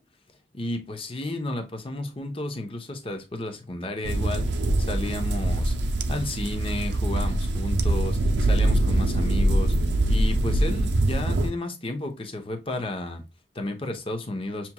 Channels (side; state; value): both; normal; correlation 0.86